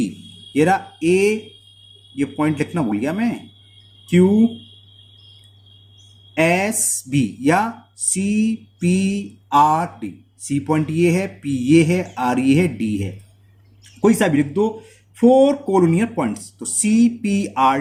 ये रहा ए, ये पॉइंट लिखना भूल गया मैं, क्यू एस बी, या C P R D, C point ये है, पी ये है, आर ये है, डी है, कोई सा भी लिख दो। 4 कोलोनियर पॉइंट्स, तो सी पी आर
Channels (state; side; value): identical; both; correlation 1.00